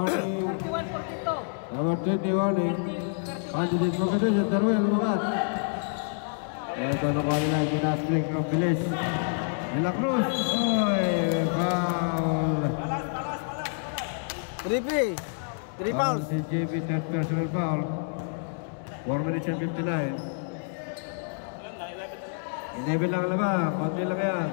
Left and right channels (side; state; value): right; silent; digital silence